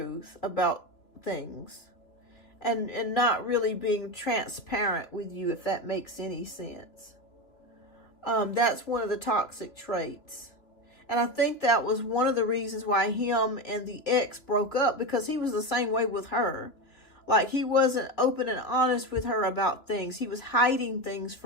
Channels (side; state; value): right; late; 2.8 ms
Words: about things. And not really being transparent with you, if that makes any sense. That's one of the toxic traits. And I think that was one of the reasons why him and the ex broke up, because he was the same way with her. Like, he wasn't open and honest with her about things. He was hiding things